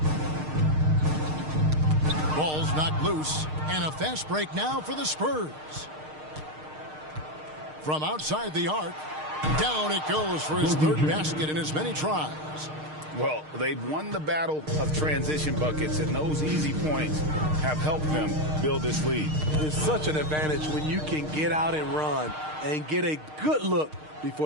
Ball's knocked loose, and a fast break now for the Spurs. From outside the arc, down it goes for his third basket in as many tries. Well, they've won the battle of transition buckets, and those easy points have helped them build this lead. It's such an advantage when you can get out and run and get a good look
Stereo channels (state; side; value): late; left; 6.5 ms